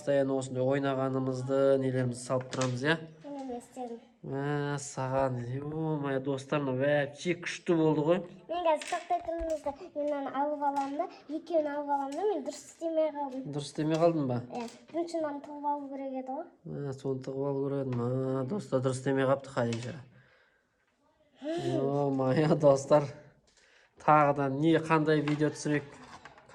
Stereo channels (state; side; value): identical; both; correlation 1.00